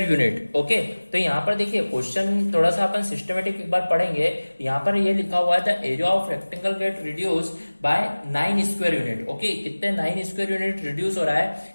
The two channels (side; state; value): both; inverted; correlation -1.00